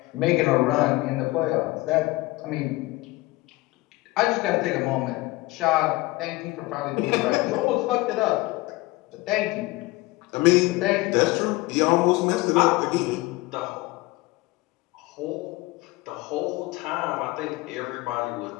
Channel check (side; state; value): right; quieter; 21.0 dB